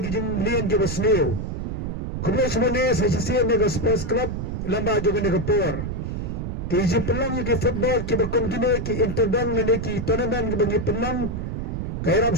gijung lian ki basneo. Kublay semane sa sisiyan ng sports club lamba jangan negapor. Kiji pelang ki football ki bakon gine ki interdang na ki tournament ki bangi pelang kay rab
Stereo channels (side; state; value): right; noise; rumble, 4 dB below the sound